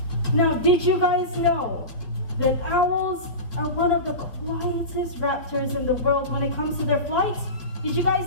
Now, did you guys know that owls are one of the quietest raptors in the world when it comes to their flight? Did you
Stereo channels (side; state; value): right; late; 4.9 ms